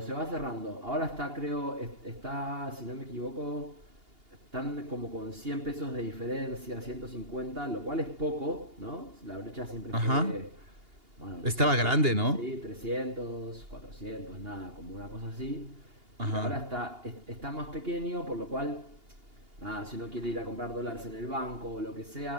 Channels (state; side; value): late; left; 2.8 ms